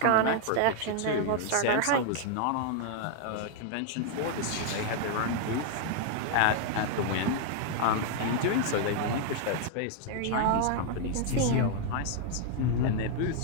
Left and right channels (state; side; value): different; both; correlation 0.00